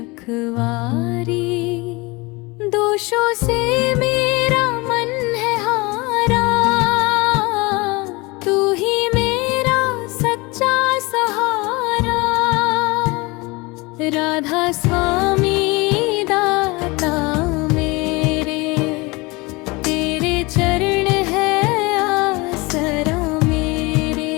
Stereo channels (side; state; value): right; quieter; 24.8 dB